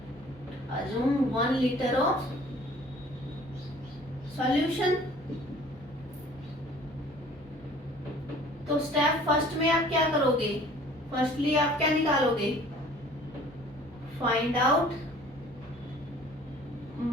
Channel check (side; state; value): both; normal; correlation 0.51